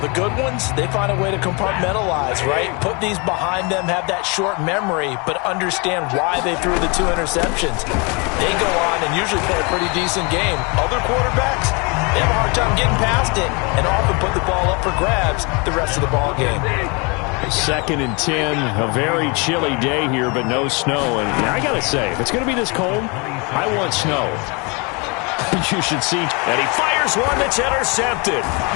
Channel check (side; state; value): right; quieter; 30.7 dB